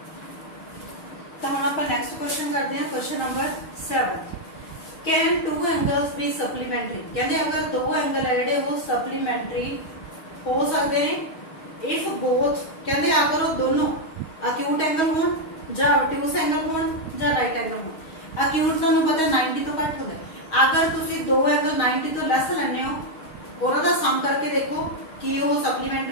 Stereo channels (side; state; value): right; late; 6.3 ms